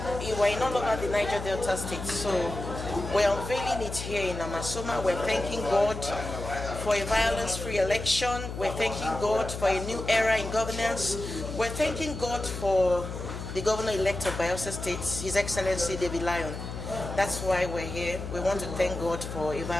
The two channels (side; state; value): left; noise; hum, 7 dB below the sound